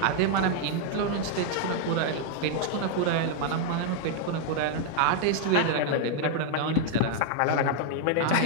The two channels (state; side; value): different; both; correlation 0.00